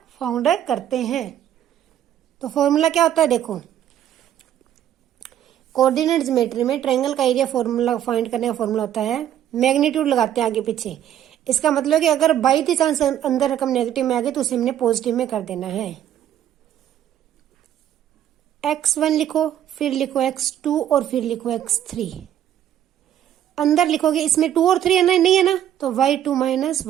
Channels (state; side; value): quieter; left; 10.8 dB